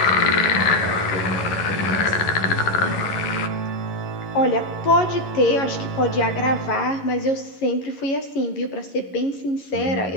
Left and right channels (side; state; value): right; late; 11 ms